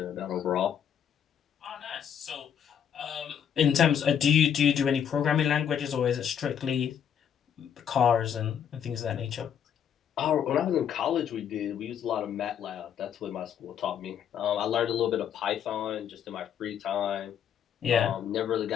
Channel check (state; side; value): quieter; right; 8.7 dB